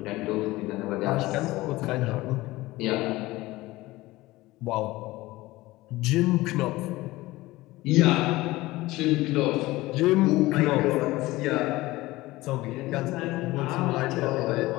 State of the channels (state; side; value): quieter; right; 19.0 dB